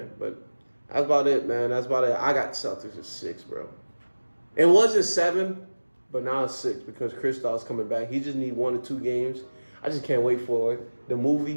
But that's about it, man. That's about it. I got Celtics at 6, bro. It wasn't 7, but now it's 6 because Kristaps coming back. He just need 1 or 2 games. I just can't wait for it. The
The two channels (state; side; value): inverted; both; correlation -1.00